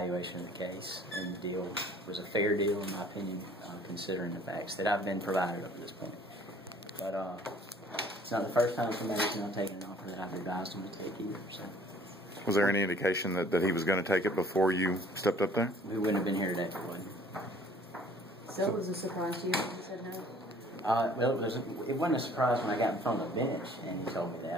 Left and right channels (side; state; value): both; normal; correlation 0.54